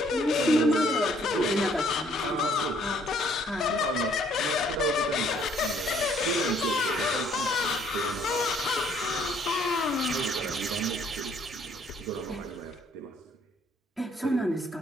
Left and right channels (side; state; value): both; normal; correlation 0.64